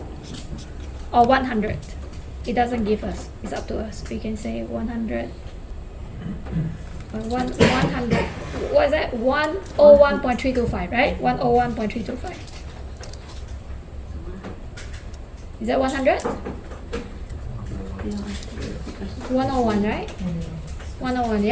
or 100. It doesn't give us. It's up to us. We can say 100. 100. What is that? 101.325, right? 101.325. Is that 100? 101, right? 101,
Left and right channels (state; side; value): identical; both; correlation 1.00